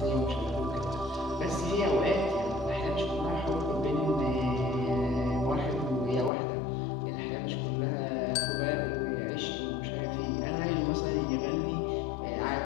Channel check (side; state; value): right; drops out; at 6.3 s